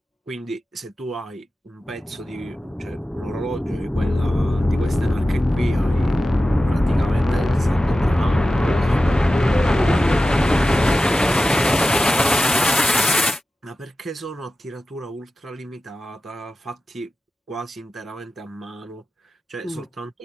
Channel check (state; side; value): normal; both; correlation 0.94